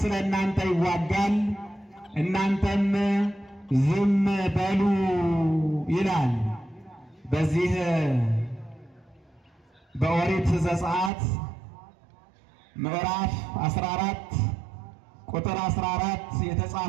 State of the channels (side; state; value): left; drops out; at 11.1 s